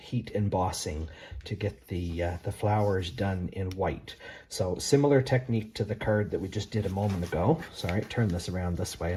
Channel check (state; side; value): identical; both; correlation 1.00